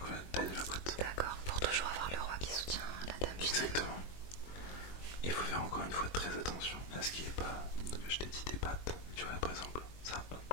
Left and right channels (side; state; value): right; late; 22 ms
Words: la taille de la boîte. D'accord, pour toujours avoir le roi qui soutient la dame finalement. Exactement. Et il faut faire encore une fois très attention à ce qui est pas. Je t'ai dit des pattes. Tu vois, par exemple, ça,